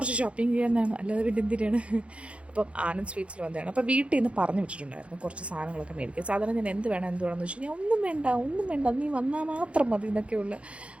ഷോപ്പിംഗ് ചെയ്യാനാണ്, അല്ലാതെ പിന്നെ എന്തിനാണ്. അപ്പം ആനന്ദ് സ്വീറ്റ്സിൽ വന്നതാണ്. അപ്പോൾ വീട്ടിൽ നിന്ന് പറഞ്ഞു വിട്ടിട്ടുണ്ടായിരുന്നു കുറച്ച് സാധനങ്ങളൊക്കെ മേടിക്കുക. സാധാരണ ഞാൻ എന്ത് വേണമെന്ന് വെച്ച് കഴിഞ്ഞാൽ ഒന്നും വേണ്ട നീ വന്നാൽ മാത്രം മതി എന്നൊക്കെയുള്ള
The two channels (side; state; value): left; late; 0.061 ms